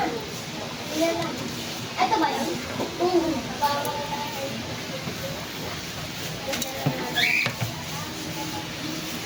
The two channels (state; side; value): identical; both; correlation 1.00